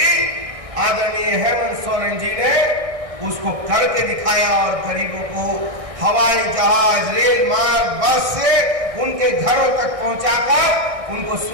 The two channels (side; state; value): left; late; 1.6 ms